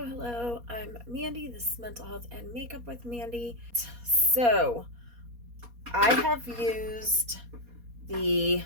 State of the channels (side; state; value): left; late; 4.2 ms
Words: hello. I'm Mandy. This is Mental Health and Makeup with Mandy. So, I have used the